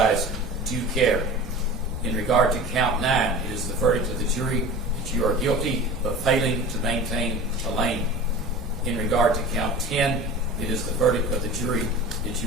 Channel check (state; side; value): normal; both; correlation 0.36